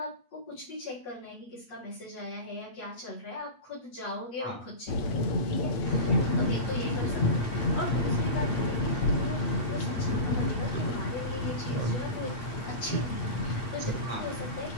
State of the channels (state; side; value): late; right; 8.3 ms